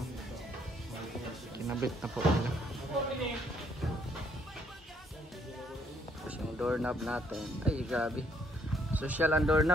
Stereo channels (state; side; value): normal; both; correlation 0.69